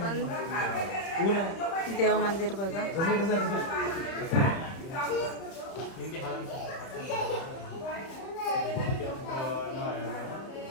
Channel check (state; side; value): late; right; 31 ms